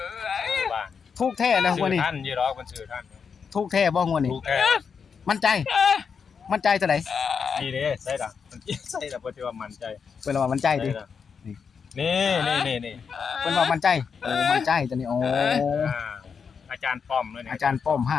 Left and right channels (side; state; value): right; quieter; 6.2 dB